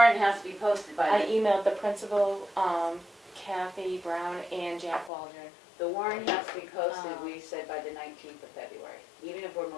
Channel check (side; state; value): right; drops out; at 5.1 s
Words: has to be posted by I the emailed the principal, Kathy Brown and Jack Waldron. The warrant has to be posted, we said, by the 19th of February, even if we're